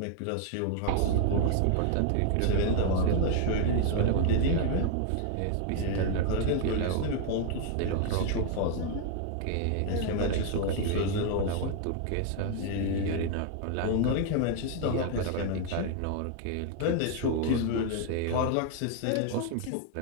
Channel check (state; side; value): different; both; correlation 0.00